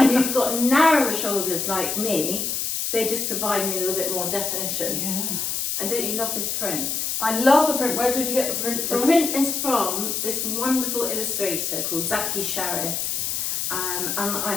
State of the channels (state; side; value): noise; left; hiss, 1 dB below the sound